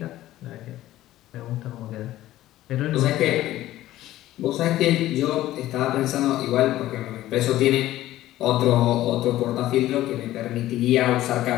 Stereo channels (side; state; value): right; quieter; 14.8 dB